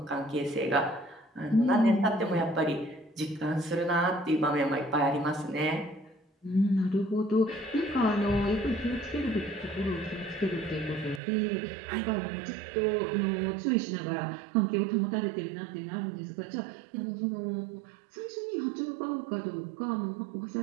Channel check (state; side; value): drops out; left; at 11.2 s